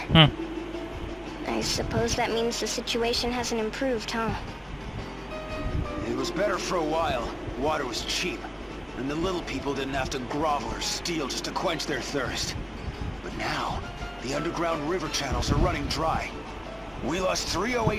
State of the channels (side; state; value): both; identical; correlation 1.00